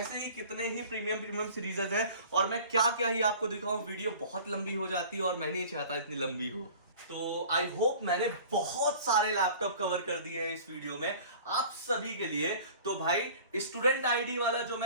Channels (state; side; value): inverted; both; correlation -0.45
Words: ही कितने ही प्रीमियम सीरीजेस है, और मैं क्या क्या ही आपको दिखाऊं, वीडियो बहुत लंबी हो जाती है और मैं नहीं चाहता इतनी लंबी हो। तो आई होप मैंने बहुत सारे लैपटॉप कवर कर दिए हैं इस वीडियो में आप सभी के लिए। तो भाई स्टूडेंट आईडी वाला जो